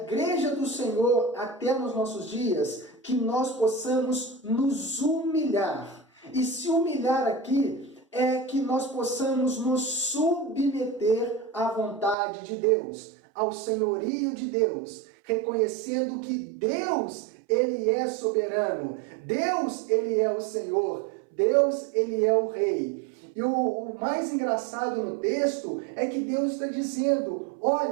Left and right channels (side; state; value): left; drops out; at 12.2 s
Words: do Senhor até nos nossos dias, que nós possamos nos humilhar. E se humilhar aqui é que nós possamos nos submeter à vontade de Deus, ao senhorio de Deus, reconhecendo que Deus, ele é soberano, Deus, ele é o Senhor, Deus, ele é o Rei. E o mais engraçado no texto é que Deus está dizendo,